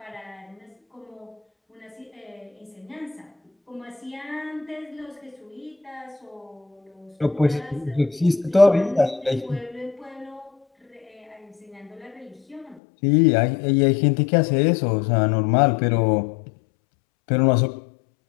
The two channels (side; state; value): right; drops out; at 12.8 s